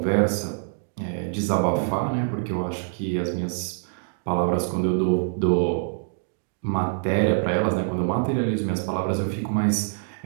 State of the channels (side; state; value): left; silent; digital silence